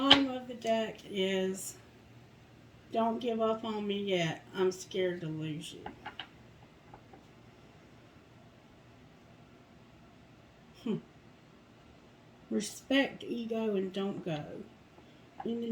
of the deck is, don't give up on me yet. I'm scared to lose you. Respect ego and don't go in the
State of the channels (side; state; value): both; identical; correlation 1.00